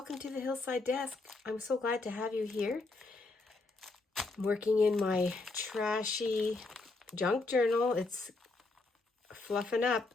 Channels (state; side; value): quieter; right; 3.4 dB